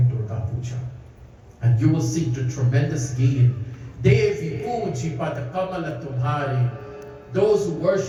Durga Puja. And you will see the tremendous gain. Devi Puji Pada Kamala Tumhari. Those who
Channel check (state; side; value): identical; both; correlation 1.00